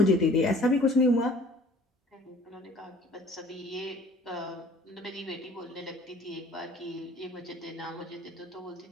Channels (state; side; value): normal; both; correlation 0.51